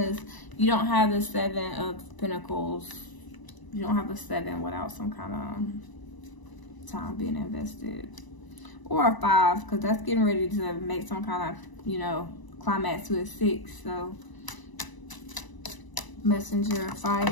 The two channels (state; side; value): late; right; 1.0 ms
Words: you don't have the Seven of Pentacles. You don't have a 7 without some kind of time being invested. Or a 5, because that's getting ready to make some kind of, you know, climax to a 6. So, Messenger of